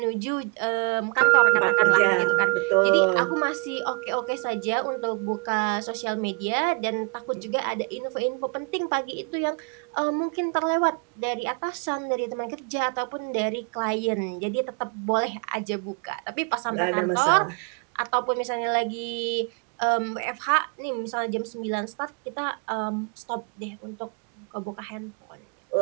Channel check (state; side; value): quieter; left; 31.9 dB